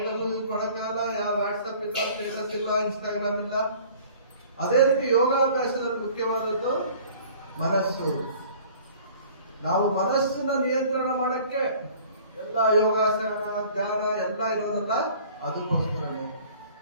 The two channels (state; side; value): inverted; both; correlation -0.50